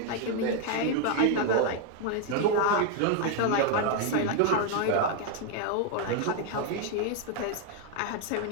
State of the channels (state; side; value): different; both; correlation 0.01